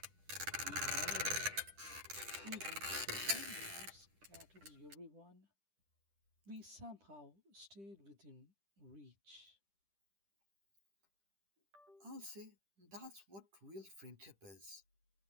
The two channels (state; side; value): late; left; 10 ms